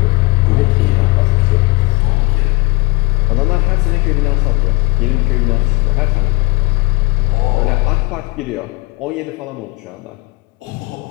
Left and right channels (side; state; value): right; quieter; 23.3 dB